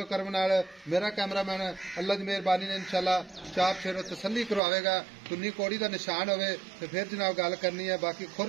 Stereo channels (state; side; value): drops out; left; at 4.6 s